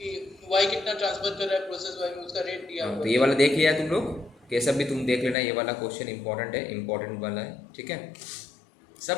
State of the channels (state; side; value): drops out; right; at 5.4 s